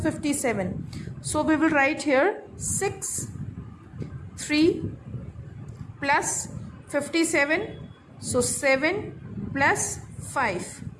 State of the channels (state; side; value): identical; both; correlation 1.00